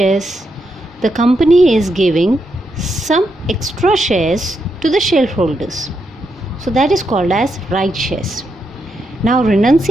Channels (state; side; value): normal; both; correlation 0.82